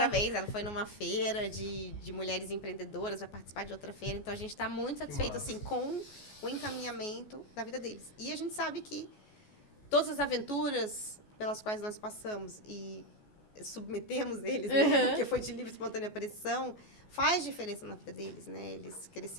Ela foi numa feira de mulheres empreendedoras, vai participar de outra feira. Então, a gente está muito satisfeito, massa. assim, com o encaminhamento da vida deles. E a gente sabe que todas as aventuras pelas quais nós passamos e submetemos eles, né? Uhum. Porque foi de livre e espontânea pressão, faz diferença na vida deles, né? Eles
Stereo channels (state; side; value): late; right; 14 ms